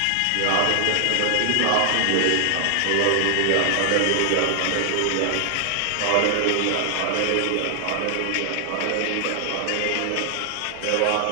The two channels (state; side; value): different; both; correlation 0.00